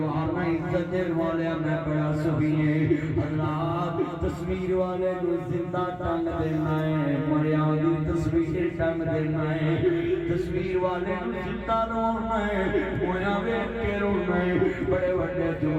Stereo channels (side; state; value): both; identical; correlation 1.00